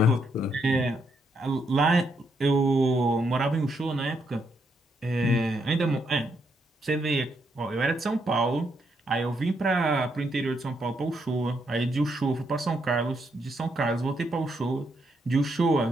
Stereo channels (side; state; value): both; normal; correlation 0.77